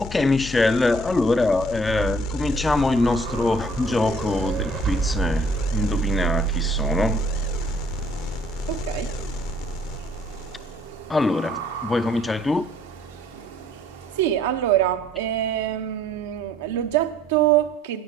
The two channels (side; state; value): both; normal; correlation 0.60